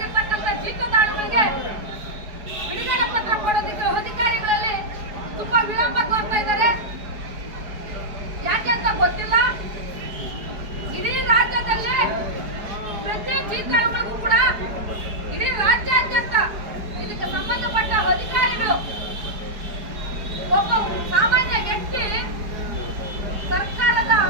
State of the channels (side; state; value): left; late; 4.7 ms